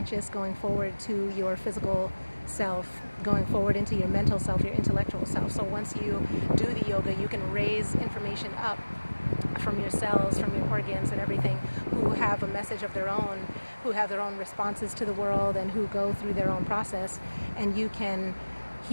going forward to your physical self, going forward into your mental self, your intellectual self. So once you do the yoga, you can raise information up from your cells, from your organs and everything, who have a message of their own, who have their own responses to the world, and who go through their own process. And you can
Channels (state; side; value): inverted; both; correlation -1.00